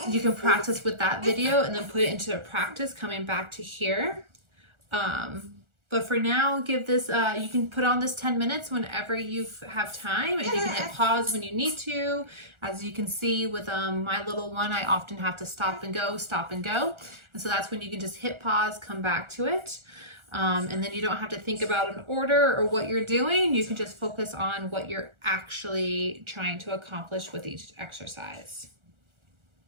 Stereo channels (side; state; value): left; late; 1.4 ms